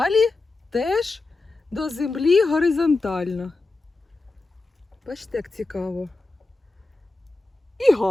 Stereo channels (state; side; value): quieter; right; 3.3 dB